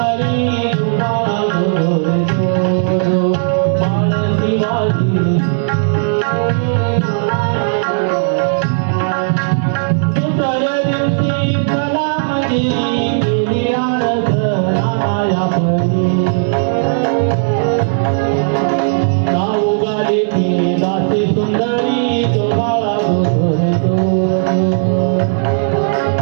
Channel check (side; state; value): left; silent; digital silence